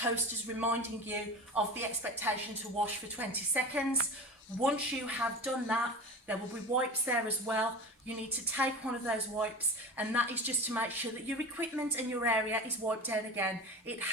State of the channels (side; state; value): both; normal; correlation 0.31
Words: reminding you of the expectation to wash for 20 seconds. Once you have done that, there will be wipes there as well. You need to take one of those wipes, and that is just to make sure that your equipment and your area is wiped down again. It